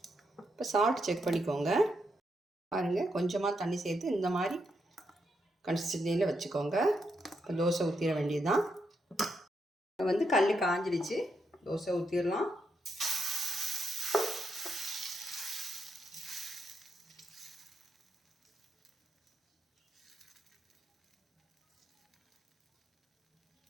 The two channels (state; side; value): normal; both; correlation 0.81